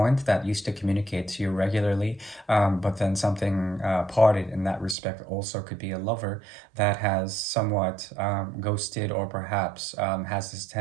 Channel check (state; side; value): drops out; left; at 5.0 s